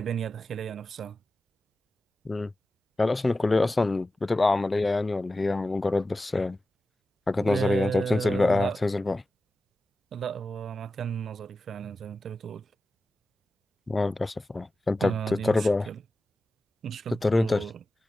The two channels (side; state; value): both; normal; correlation 0.93